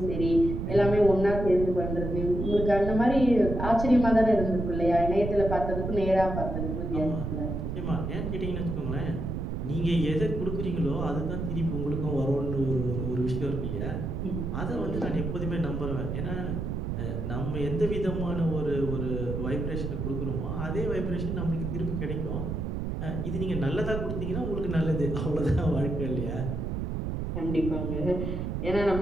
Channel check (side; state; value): right; noise; rumble, 3 dB below the sound